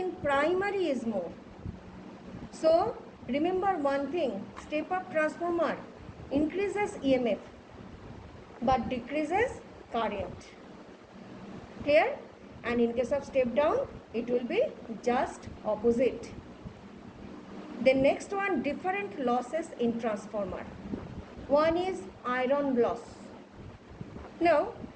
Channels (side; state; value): both; identical; correlation 1.00